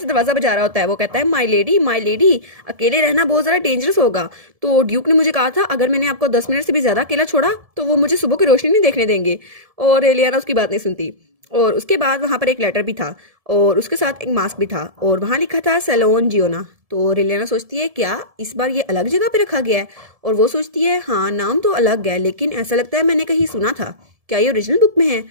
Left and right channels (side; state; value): left; late; 1.7 ms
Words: दरवाजा बजा रहा होता है। वो कहता है माई लेडी अकेले रहना बहुत ज़्यादा डेंजरस होगा। तो ड्यूक ने मुझे कहा था अगर मैंने आपको 10 मिनट से भी ज़्यादा अकेला छोड़ा तो वो मुझे सुबह की रोशनी नहीं देखने देंगे। और रेलियाना उसकी बात नहीं सुनती। और उसके बाद वहां पर एक लेटर भी था और उसके साथ एक मास्क भी था और वहां लिखा था सैलोन जियोना। तो रेलियाना सोचती है क्या इस बार ये अलग जगह पे रखा गया है? और वो सोचती है हाँ नाम तो अलग है, लेकिन ऐसा लगता है मैंने कहीं सुना था, क्या ये ओरिजिनल बुक में है?